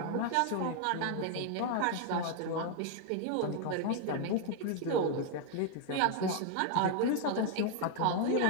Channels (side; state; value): both; different; correlation 0.00